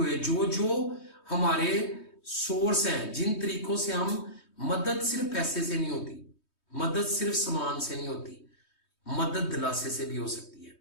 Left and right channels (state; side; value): late; right; 3.2 ms